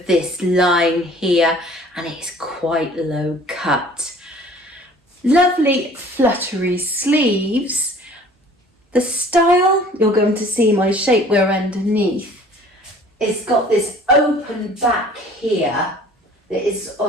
this line here, and it's quite low cut. Lovely fluttery sleeves. The style, you're going to see my shapewear underneath. It's got this open back here that is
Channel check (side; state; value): both; normal; correlation 0.50